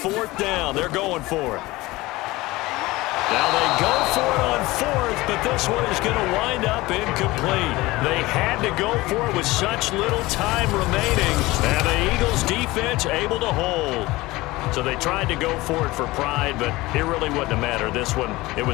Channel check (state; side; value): quieter; right; 20.0 dB